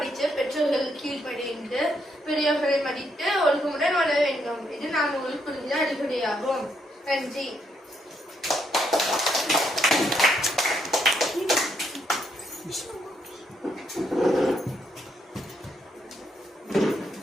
பெற்றோர்கள் கீழ்ப்படிந்து பெரியவர்களை மதித்து ஒழுக்கமுடன் வளர வேண்டும். இது நான் உங்களுக்கு புரிஞ்ச அடிப்படையாகும். நன்றி.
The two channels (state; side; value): normal; both; correlation 0.76